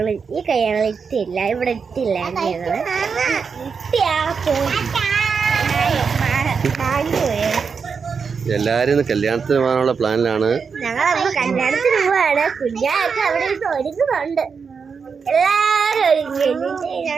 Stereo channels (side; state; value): left; quieter; 5.7 dB